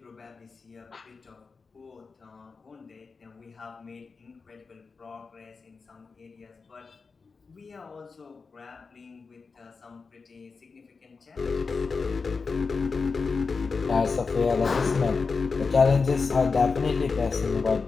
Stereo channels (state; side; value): quieter; right; 4.7 dB